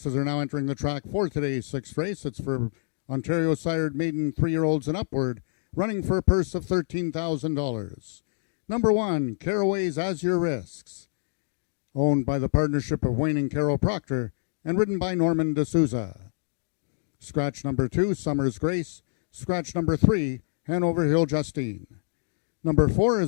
are now entering the track for today's sixth race. It's for Ontario sired maiden 3-year-olds and upward, running for a purse of $13,000. Number 1, Caraway's As Your Risks, owned by the partnership of Wayne and Carol Proctor and ridden by Norman D'Souza. Scratch number 2, Summer's Grace. Scratch number 3, Hanover Hill Justine. Number 4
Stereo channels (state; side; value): silent; right; digital silence